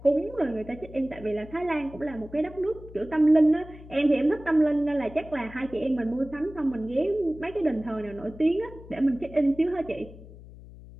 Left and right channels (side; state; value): left; noise; hum, 18 dB below the sound